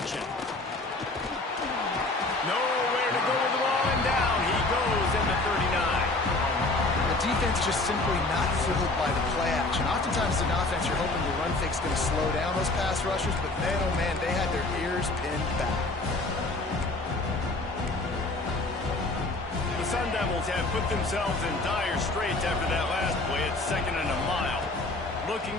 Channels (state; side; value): quieter; right; 3.0 dB